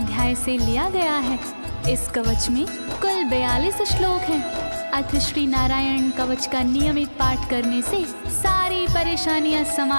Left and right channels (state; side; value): inverted; both; correlation -1.00